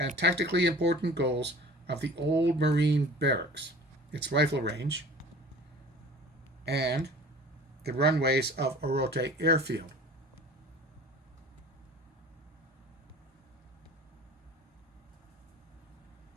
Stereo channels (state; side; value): normal; both; correlation 0.43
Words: tactically important goals of the old Marine Barracks, its rifle range, and the runways of Orote Airfield.